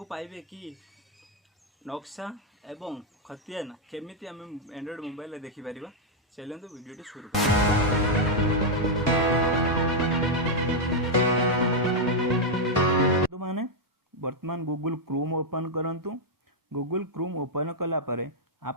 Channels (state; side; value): normal; both; correlation -0.02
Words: पाइबे कि नक्शा एवं खतियान केमिति हम एंड्रॉइड मोबाइल रे देखि परिबा। चलंतु वीडियो टी शुरू माने वर्तमान गूगल क्रोम ओपन करंतु। गूगल क्रोम ओपन कला परे